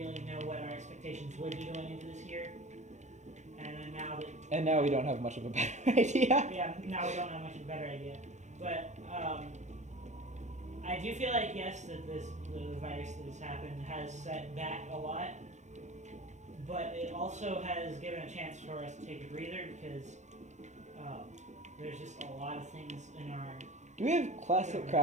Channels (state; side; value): late; left; 0.34 ms